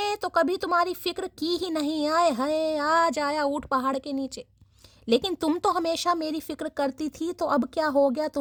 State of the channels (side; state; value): both; identical; correlation 1.00